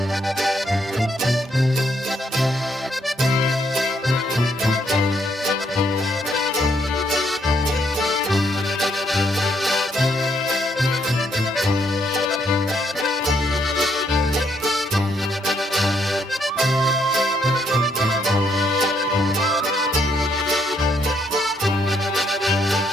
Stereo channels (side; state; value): both; normal; correlation 0.73